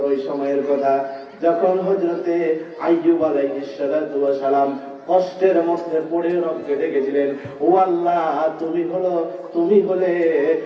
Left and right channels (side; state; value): both; identical; correlation 1.00